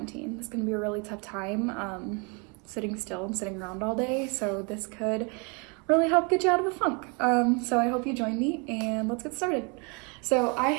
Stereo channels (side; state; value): left; quieter; 33.0 dB